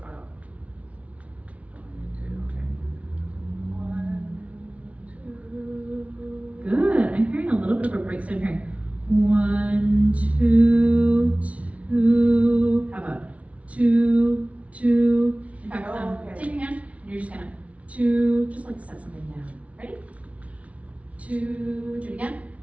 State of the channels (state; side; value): late; left; 0.065 ms